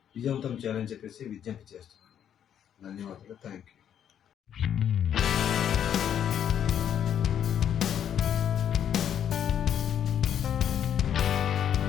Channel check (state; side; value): quieter; right; 9.3 dB